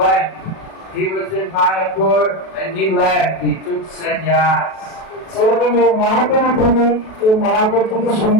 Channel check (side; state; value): right; late; 37 ms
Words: He was in Mayapur and he left. He took sannyas. সেরকম এই মহাপ্রভু থেকে এই মহাপ্রভু থেকে